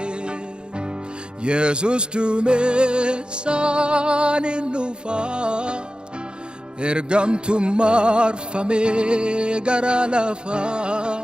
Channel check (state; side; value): late; left; 0.050 ms